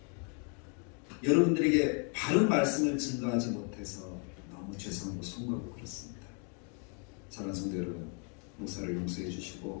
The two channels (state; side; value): quieter; right; 39.0 dB